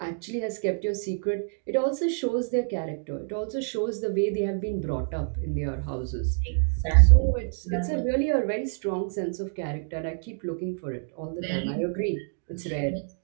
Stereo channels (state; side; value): silent; left; digital silence